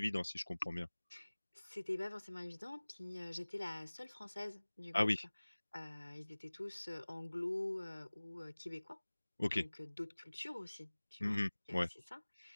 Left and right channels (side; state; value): both; inverted; correlation -1.00